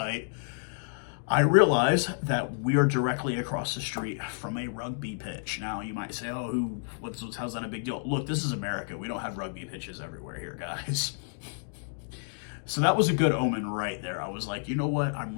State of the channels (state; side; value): silent; right; digital silence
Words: I realize that we are directly across the street from a rugby pitch. Now, you might say, oh, how's that a big deal? Look, this is America. We don't have rugby pitches everywhere here, guys. So that was a good omen right there. I was like, you know what?